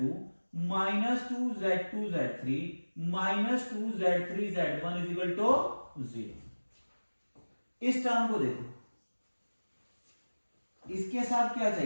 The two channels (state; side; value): inverted; both; correlation -1.00